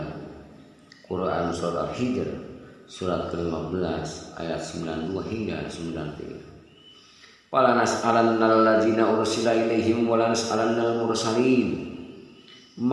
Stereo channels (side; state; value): both; identical; correlation 1.00